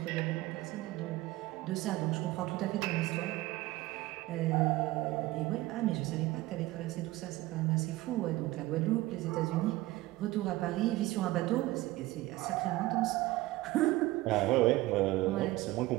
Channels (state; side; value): quieter; left; 18.2 dB